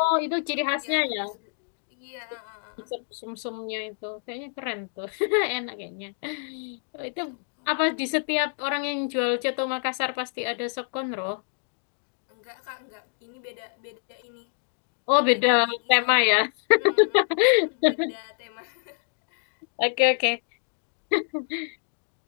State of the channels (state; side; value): silent; right; 60 dB below the other